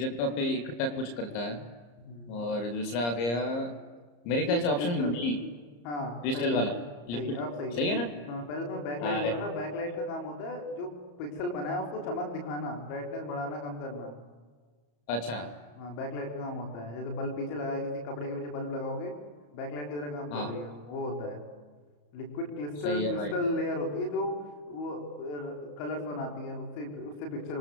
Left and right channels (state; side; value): late; right; 34 ms